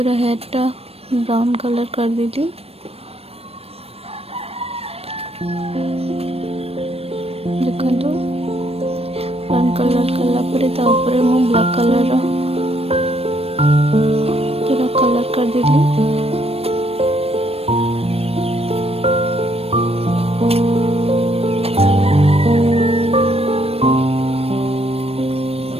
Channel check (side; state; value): left; late; 0.28 ms